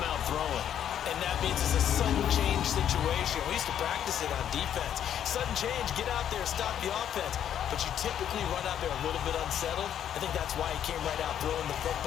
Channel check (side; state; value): right; quieter; 9.8 dB